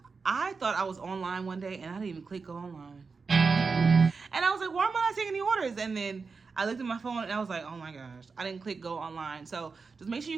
I thought I was online one day and I didn't even click go online. And I was like, why am I not seeing any orders? And then I looked at my phone and I was like, oh my gosh, I didn't click go online. So just make sure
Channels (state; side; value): quieter; left; 4.7 dB